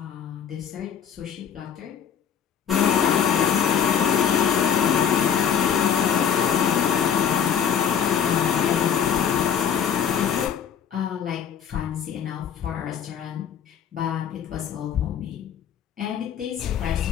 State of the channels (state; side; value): quieter; right; 8.2 dB